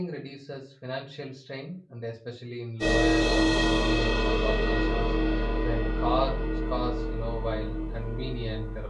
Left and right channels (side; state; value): both; identical; correlation 1.00